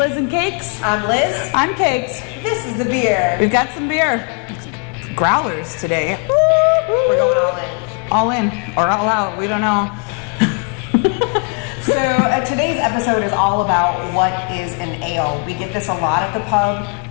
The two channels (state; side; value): quieter; right; 37.2 dB